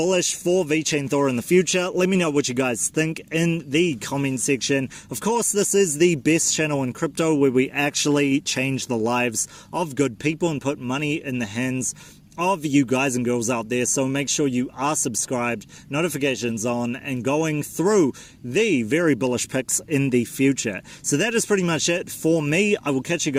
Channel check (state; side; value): identical; both; correlation 1.00